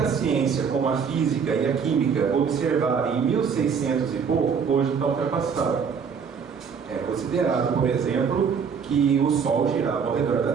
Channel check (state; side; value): quieter; left; 6.4 dB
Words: ciência, como a física e a química, observaram em 1600 e pouco, hoje está ultrapassado. É considerado, por exemplo, que o Sol girava ao redor da